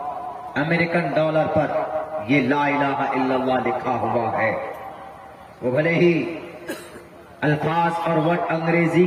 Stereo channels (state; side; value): identical; both; correlation 1.00